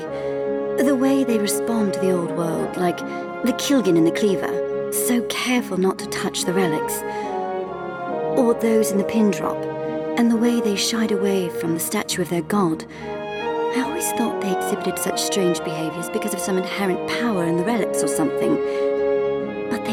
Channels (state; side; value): identical; both; correlation 1.00